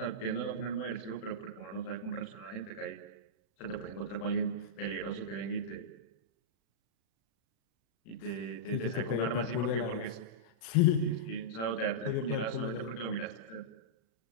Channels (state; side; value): late; right; 36 ms